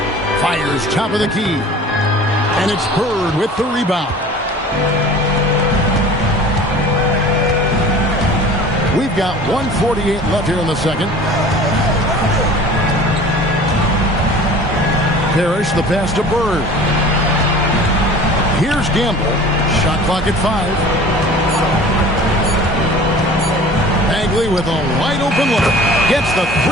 Fires top of the key. And it's Bird with the rebound. We've got 1:48 left here in the second. Parrish the pass to Bird. Here's Gamble. Shot clock at 5. Bagley with a wide open look. Gets the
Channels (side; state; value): both; normal; correlation 0.43